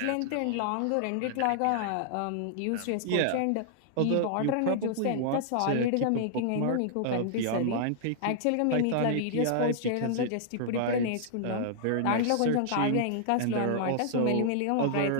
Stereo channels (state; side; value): different; both; correlation -0.01